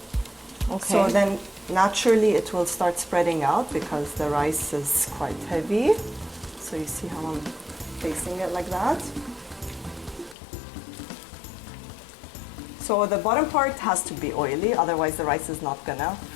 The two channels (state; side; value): drops out; right; at 10.4 s